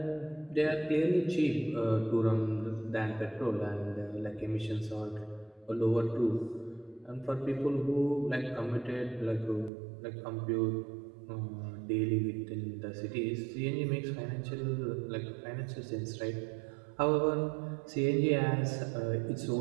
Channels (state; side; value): drops out; left; at 9.7 s